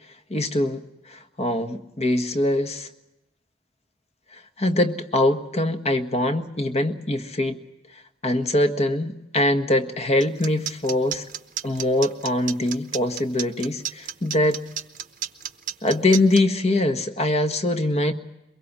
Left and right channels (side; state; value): both; normal; correlation 0.61